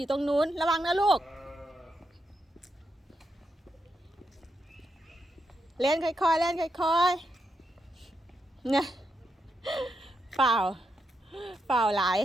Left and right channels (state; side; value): normal; both; correlation 0.83